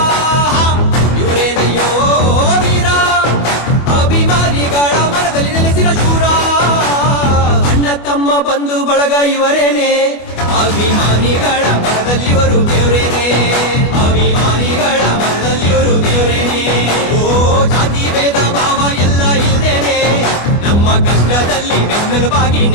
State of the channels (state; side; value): late; right; 24 ms